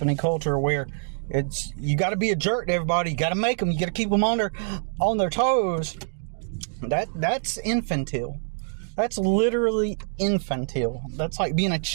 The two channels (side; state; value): left; silent; digital silence